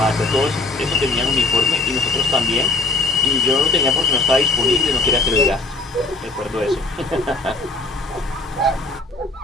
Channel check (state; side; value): quieter; right; 3.2 dB